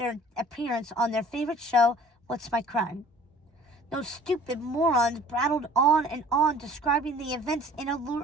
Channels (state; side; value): normal; both; correlation 0.50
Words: appearance on their favorite show, What's My Crime? Those stupid morons prattled on and on, describing the events